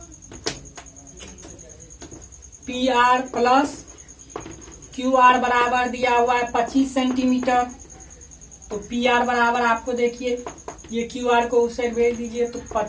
are plus Q are बराबर दिया हुआ है 25 सेंटीमीटर। तो पी आर बराबर आपको देखिए, ये क्यू आर को उस साइड भेज दीजिए तो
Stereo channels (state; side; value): identical; both; correlation 1.00